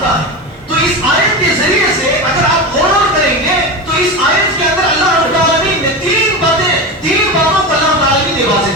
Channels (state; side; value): normal; both; correlation 0.22